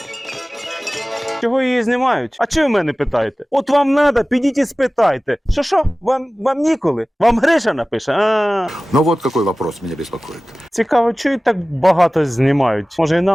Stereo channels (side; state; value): both; normal; correlation 0.97